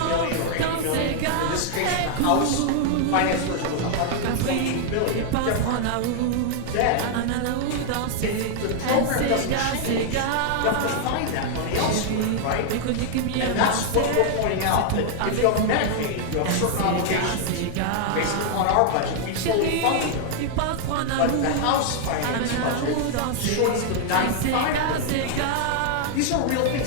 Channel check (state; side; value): different; both; correlation 0.00